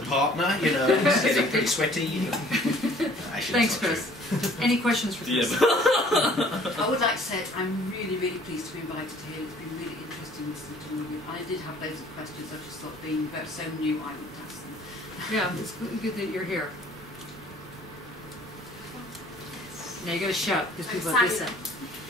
a partner, you know, it's getting pretty sweaty. You know. Actually, thanks, Chris. Any questions for Chris? I would like to say I'm really pleased to be invited here. It's been really interesting listening to all of you. I did have loads of questions. I just thought being so new, I would ask them. Yeah, it's good that you're here. Now you gotta shout because people are listening.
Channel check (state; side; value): normal; both; correlation 0.55